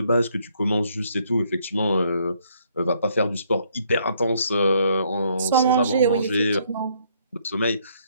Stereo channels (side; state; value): both; inverted; correlation -0.68